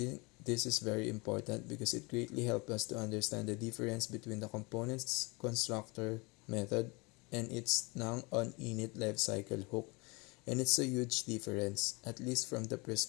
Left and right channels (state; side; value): quieter; right; 27.3 dB